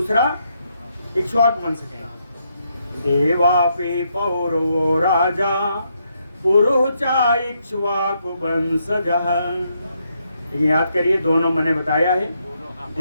इक्ष्वाकु वंश के हैं। देवापि पौरो राजा पुरुचा इक्ष्वाकु वंशजः। लेकिन याद करिए, दोनों मैंने बताया है,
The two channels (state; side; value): inverted; both; correlation -0.78